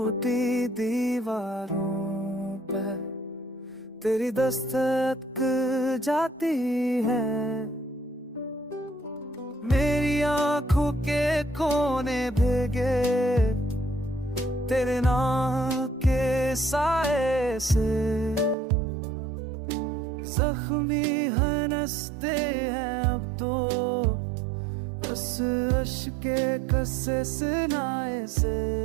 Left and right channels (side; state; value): left; drops out; at 18.6 s